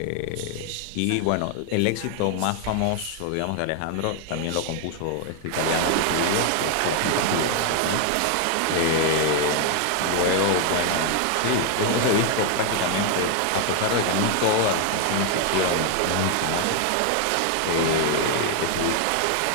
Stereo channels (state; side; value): different; both; correlation 0.00